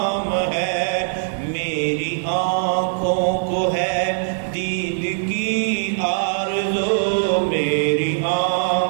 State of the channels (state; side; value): silent; left; digital silence